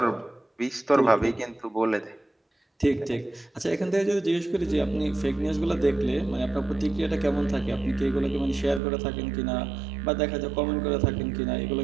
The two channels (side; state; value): left; drops out; at 8.8 s